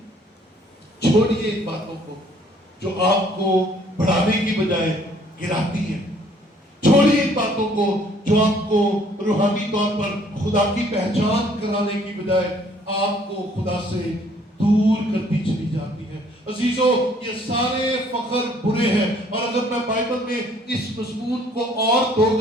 چھوڑیے ان باتوں کو جو آپ کو بڑھانے کی بجائے گراتی ہیں چھوڑیے ان باتوں کو جو آپ کو روحانی طور پر خدا کی پہچان کرانے کی بجائے آپ کو خدا سے دور کرتی چلی جاتی ہے عزیزو یہ سارے فخر برے ہیں اور اگر میں بائبل میں اس مضمون کو اور 2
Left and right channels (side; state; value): both; normal; correlation 0.60